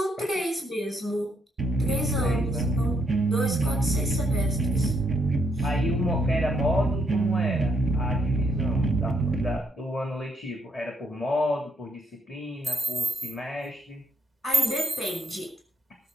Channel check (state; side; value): normal; both; correlation 0.75